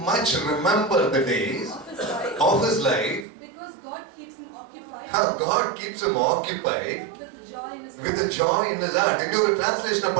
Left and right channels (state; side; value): drops out; left; at 3.2 s